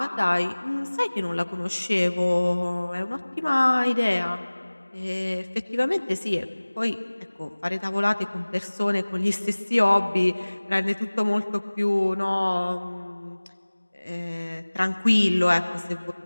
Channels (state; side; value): inverted; both; correlation -1.00